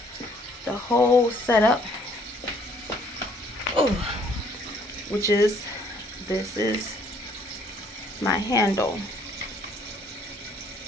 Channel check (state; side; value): normal; both; correlation 0.63